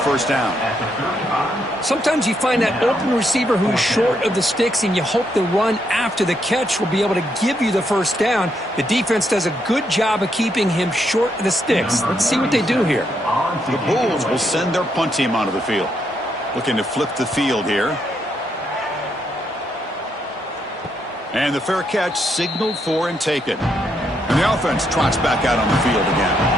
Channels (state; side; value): normal; both; correlation 0.77